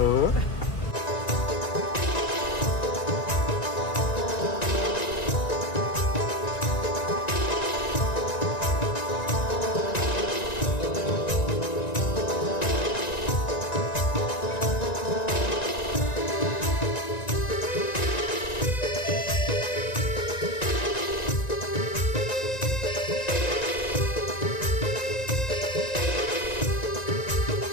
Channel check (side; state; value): right; late; 1.9 ms